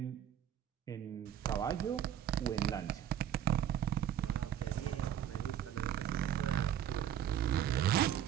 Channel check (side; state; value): left; quieter; 10.3 dB